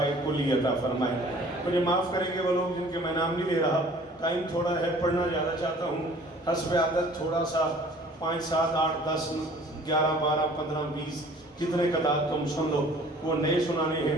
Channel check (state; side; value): normal; both; correlation 0.51